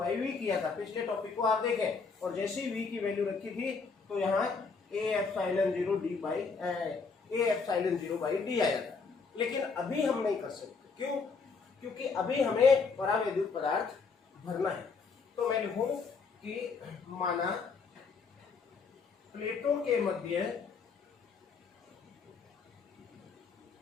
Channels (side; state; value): right; quieter; 4.9 dB